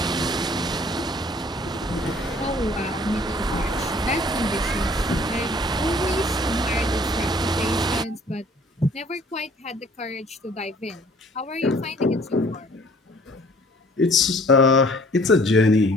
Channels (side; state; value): both; normal; correlation 0.55